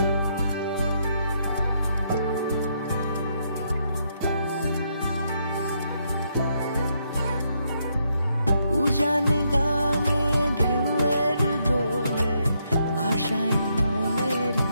উজান গাঙে ঢেউয়ের দোলে ভাষাই মনেরই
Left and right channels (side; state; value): both; inverted; correlation -0.76